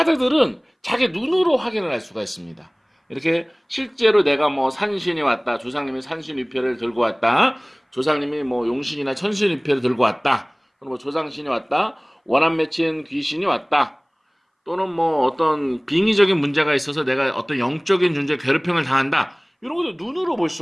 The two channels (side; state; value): both; identical; correlation 1.00